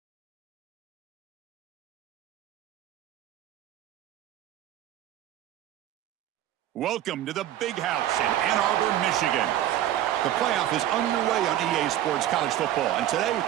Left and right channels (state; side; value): quieter; left; 12.3 dB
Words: Welcome to the Big House in Ann Arbor, Michigan. The playoff is underway on EA Sports College Football, and today